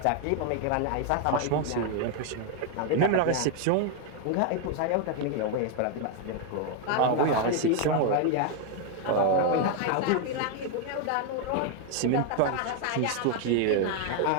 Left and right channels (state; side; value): different; both; correlation 0.01